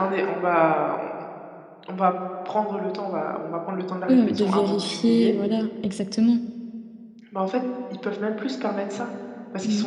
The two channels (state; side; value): identical; both; correlation 1.00